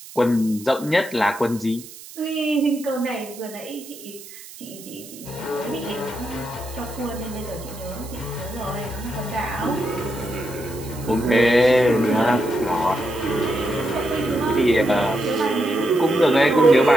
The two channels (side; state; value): right; noise; hiss, 17 dB below the sound